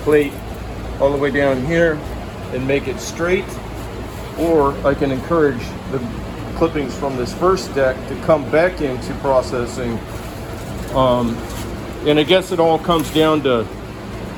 all the way down here and make it straight, or I can encourage the clippings from this first deck to come back into processing. And I guess it all comes down to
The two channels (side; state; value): both; identical; correlation 1.00